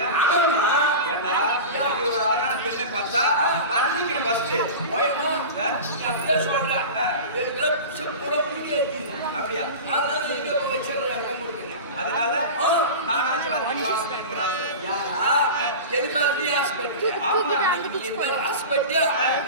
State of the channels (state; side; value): inverted; both; correlation -0.30